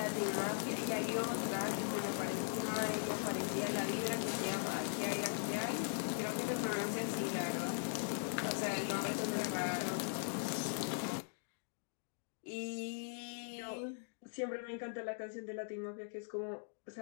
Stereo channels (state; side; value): silent; right; digital silence